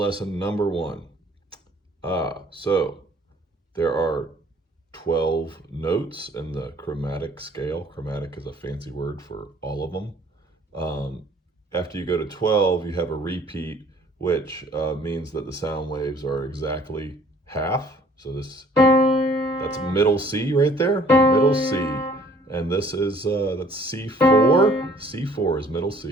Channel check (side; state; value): both; normal; correlation 0.57